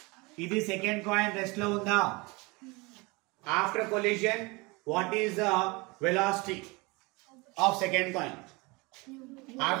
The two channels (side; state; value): left; quieter; 25.5 dB